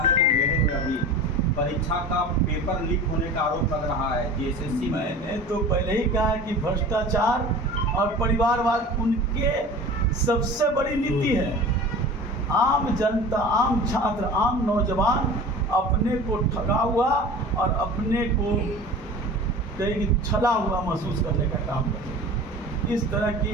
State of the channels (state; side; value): normal; both; correlation 0.38